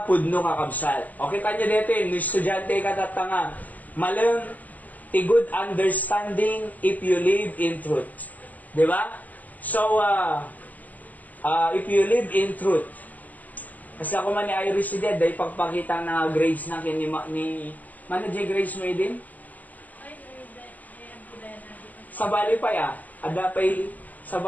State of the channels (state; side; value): late; right; 0.080 ms